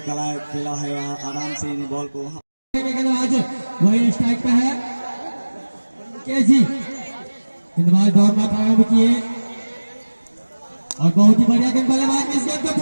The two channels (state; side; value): inverted; both; correlation -1.00